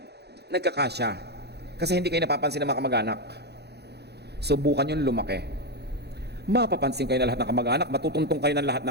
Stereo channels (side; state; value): left; late; 0.48 ms